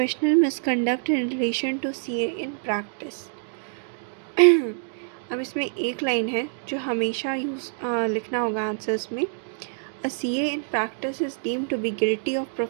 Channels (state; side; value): silent; left; digital silence